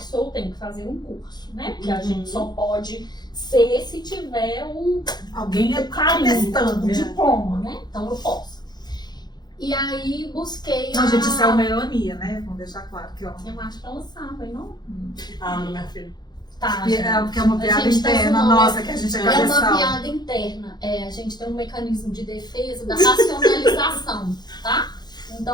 sou, tenho que fazer um curso, né? Porque a gente só pode ser se tiver alguém o carinho, testando, o diploma, né? Então eu posso. E aí busquei Não, gente, isso é uma ironia, né? Vamos deixar claro que eu acho que ela sabe, não? Não, minha filha. Tá, porque é uma piada interna nossa, que a gente é cabeçal. É uma piada interna. A gente tem um mecanismo de defesa da racionalização, tá?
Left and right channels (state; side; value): late; right; 0.20 ms